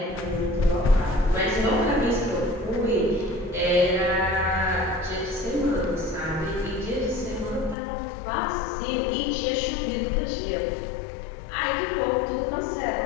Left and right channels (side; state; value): right; drops out; at 7.8 s